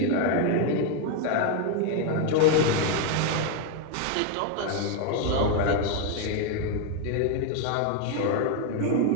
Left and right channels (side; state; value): both; different; correlation 0.01